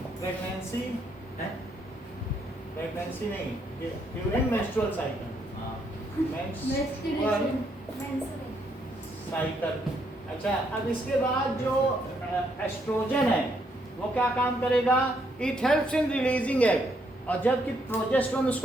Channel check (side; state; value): both; normal; correlation 0.74